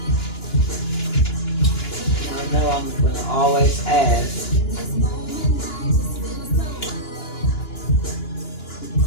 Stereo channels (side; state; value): right; late; 2.9 ms